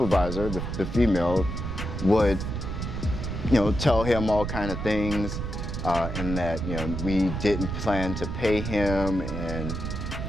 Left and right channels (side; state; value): right; noise; rumble, 4 dB below the sound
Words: the female, would tell him all kind of things, and that we didn't plan to pay him, and